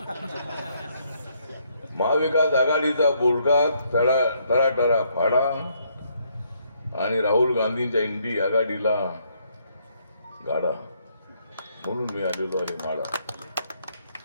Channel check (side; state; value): both; inverted; correlation -0.72